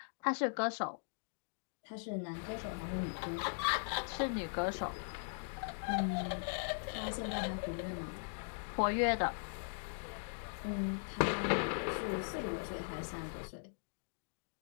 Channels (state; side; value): silent; right; digital silence